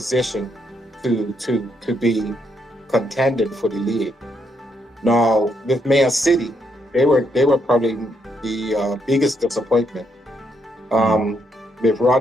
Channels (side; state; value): both; normal; correlation 0.76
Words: to be contended for the league. Now with Man City, they were probably the biggest disappointment. With